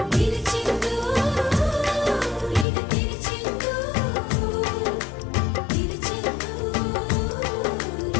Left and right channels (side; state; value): right; drops out; at 2.7 s